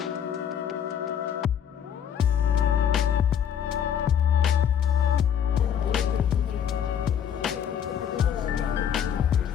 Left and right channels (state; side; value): quieter; right; 8.7 dB